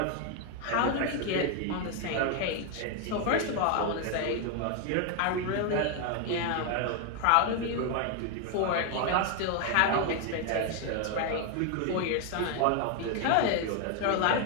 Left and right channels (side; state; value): both; different; correlation 0.01